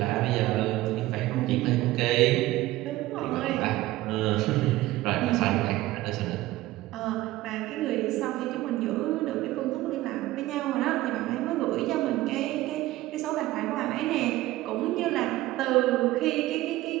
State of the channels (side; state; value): left; quieter; 17.0 dB